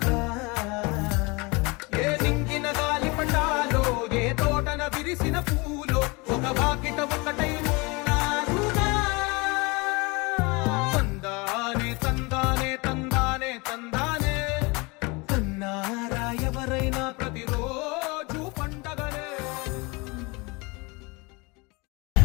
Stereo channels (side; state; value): right; quieter; 27.0 dB